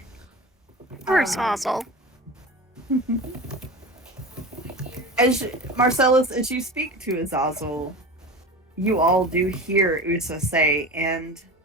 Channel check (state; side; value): normal; both; correlation 0.31